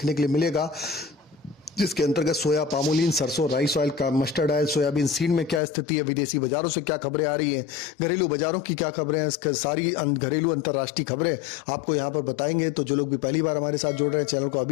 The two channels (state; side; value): drops out; right; at 5.6 s